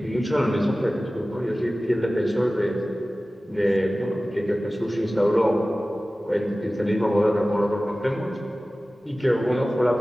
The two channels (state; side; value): normal; both; correlation 0.97